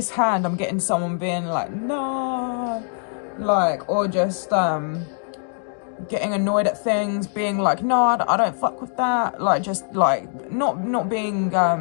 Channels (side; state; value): right; silent; 64 dB below the other